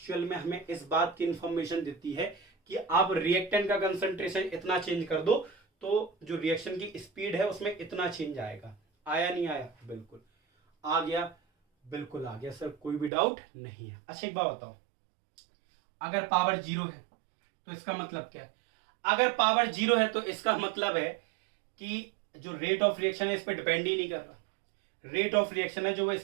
में हमें इस बात की इंफॉर्मेशन देती है कि आप रिएक्टेंट का कंसंट्रेशन इतना चेंज कर दो तो जो रिएक्शन की स्पीड है उसमें इतना चेंज आएगा। आया नहीं आया? बिल्कुल आ गया, बिल्कुल आ गया सर, कोई भी डाउट नहीं है। अच्छा एक बात बताओ, अगर पावर 0 है तो इसका मतलब क्या है? अगर पावर 0 है तो इसका मतलब है कि जो रेट ऑफ रिएक्शन है इस पर डिपेंड ही नहीं कर रहा। रेट ऑफ रिएक्शन है जो वो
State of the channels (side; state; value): left; drops out; at 13.1 s